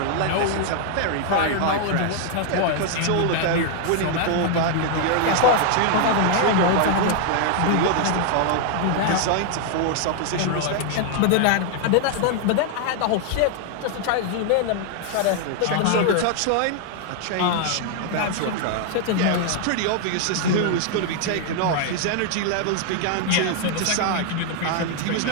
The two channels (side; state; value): both; different; correlation 0.00